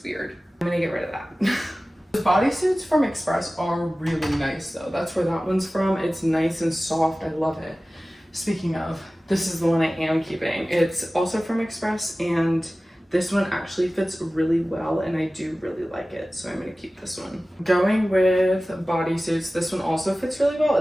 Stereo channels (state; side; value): normal; both; correlation 0.97